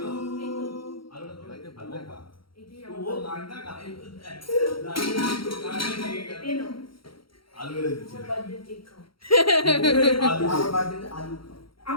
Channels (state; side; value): late; right; 0.74 ms